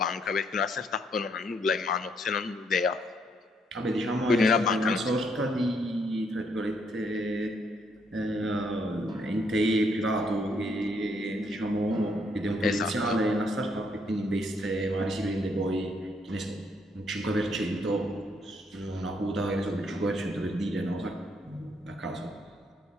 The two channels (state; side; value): normal; both; correlation 0.72